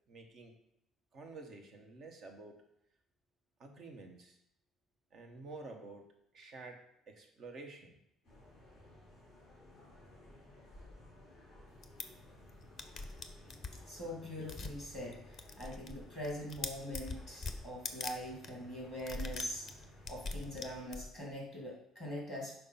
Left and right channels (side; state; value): both; normal; correlation 0.59